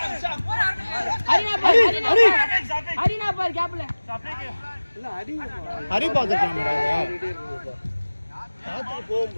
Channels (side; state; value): both; inverted; correlation -1.00